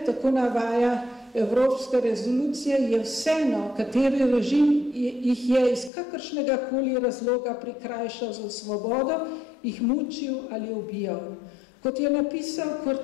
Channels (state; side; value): drops out; right; at 5.9 s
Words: tako navaja Evropska rezolucija, je vseeno, kateri režim jih je iz kakršnega koli razloga prikrajšal za svobodo, jih mučil ali ubijal. Kot je napisal